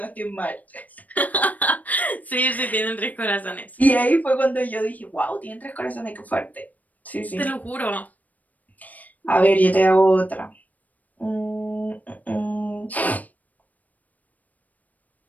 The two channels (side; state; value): right; late; 0.076 ms